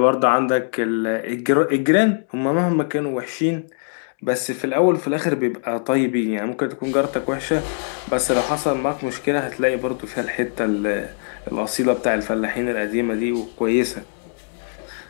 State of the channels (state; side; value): silent; right; digital silence